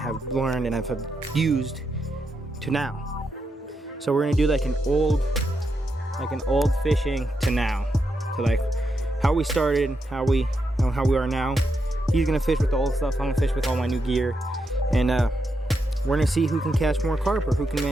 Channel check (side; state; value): both; normal; correlation 0.84